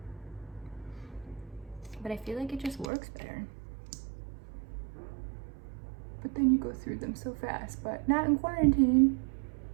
But I feel like it just works better. But then you go through them so fast, but not in quarantine.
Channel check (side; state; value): left; drops out; at 2.9 s